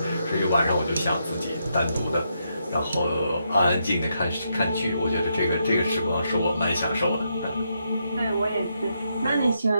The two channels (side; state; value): both; inverted; correlation -0.80